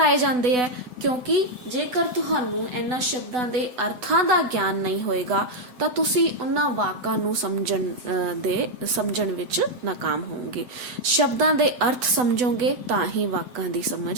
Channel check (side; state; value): left; late; 8.0 ms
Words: ਜਾਂਦੇ ਹੈ? ਕਿਉਂਕਿ ਜੇਕਰ ਤੁਹਾਨੂੰ ਇਹਨਾਂ ਸ਼ਬਦਾਂ ਦੇ ਅਰਥਾਂ ਦਾ ਗਿਆਨ ਨਹੀਂ ਹੋਏਗਾ ਤਾਂ ਤੁਸੀਂ ਉਹਨਾਂ ਵਾਕਾਂ ਨੂੰ ਸਮਝਣ ਵਿੱਚ ਨਾਕਾਮ ਹੋਵੋਗੇ। ਸ਼ਬਦਾਂ ਦੇ ਅਰਥ ਸਮਝੋਗੇ ਤਾਂ ਹੀ ਵਾਕਾਂ ਦੀ